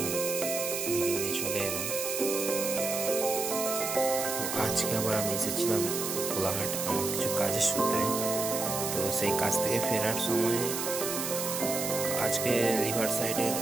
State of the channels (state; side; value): noise; right; hiss, 3 dB below the sound